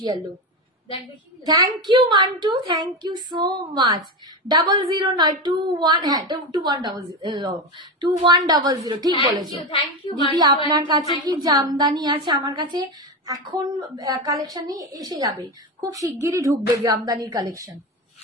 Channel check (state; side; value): normal; both; correlation 0.17